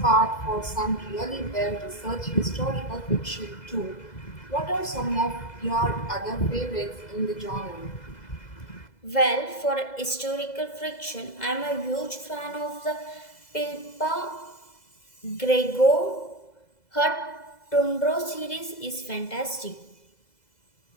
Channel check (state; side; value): late; right; 2.0 ms